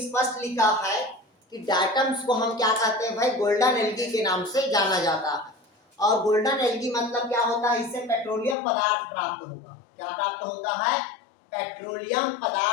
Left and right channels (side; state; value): right; drops out; at 8.6 s